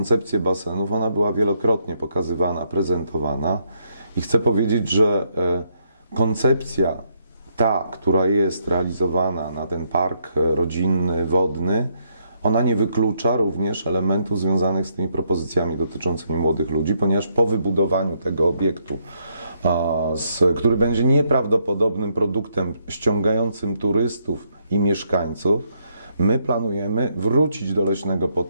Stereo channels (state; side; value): inverted; both; correlation -0.75